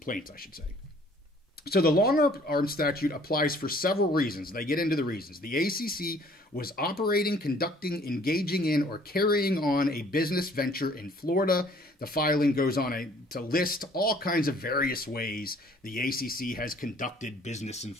I should say. So the long-arm statute applies for several reasons. They get into the reasons. The ACC was operating, conducting, engaging in, or carrying on a business venture in Florida. The filing goes on to list all kinds of various ways the ACC has conducted business in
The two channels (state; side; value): normal; both; correlation 0.57